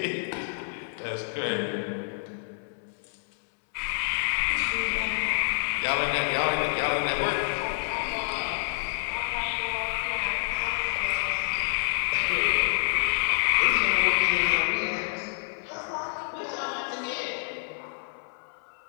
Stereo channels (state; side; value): silent; right; 59 dB below the other